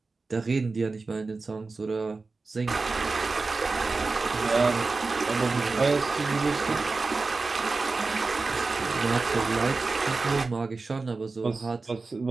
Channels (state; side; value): quieter; left; 3.9 dB